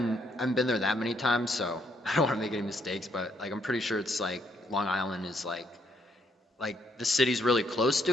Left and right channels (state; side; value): normal; both; correlation 0.71